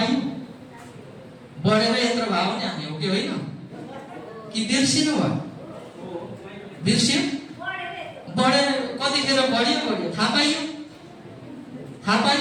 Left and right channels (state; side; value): identical; both; correlation 1.00